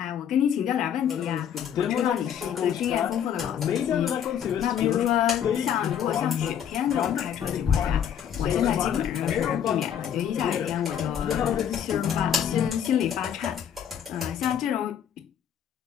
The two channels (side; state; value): right; quieter; 9.0 dB